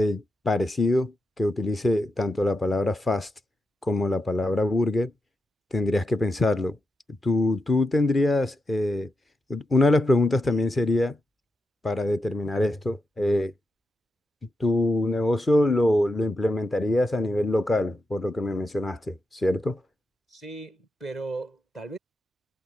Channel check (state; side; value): normal; both; correlation 0.87